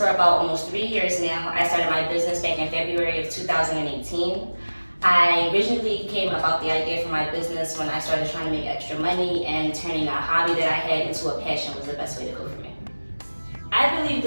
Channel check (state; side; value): inverted; both; correlation -1.00